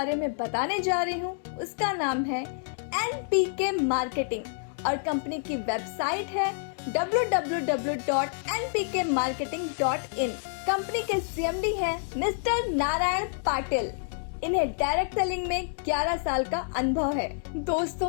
में बताने जा रही हूँ, उसका नाम है NPK मार्केटिंग और कंपनी की वेबसाइट है www.npkmarketing.in। कंपनी के CMD हैं मिस्टर नारायण पाटिल। इन्हें डायरेक्ट सेलिंग में 11 साल का अनुभव है। दोस्तों,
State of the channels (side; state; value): right; silent; digital silence